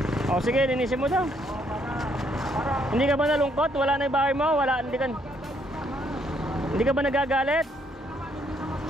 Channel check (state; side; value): normal; both; correlation 0.70